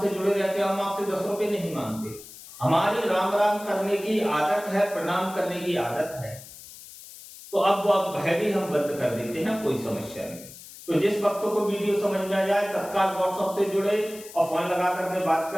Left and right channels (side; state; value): left; noise; hiss, 17 dB below the sound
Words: जुड़े रहते हो, हम आपसे 10 रुपए नहीं मांगते। हमारी राम राम करने की आदत है, प्रणाम करने की आदत है, तो अब भय भी हम बंद कर देते हैं, कोई समस्या नहीं। तो जिस भक्तों को वीडियो समझ में आ जाए तत्काल व्हाट्सएप से जुड़े और फोन लगा करके बात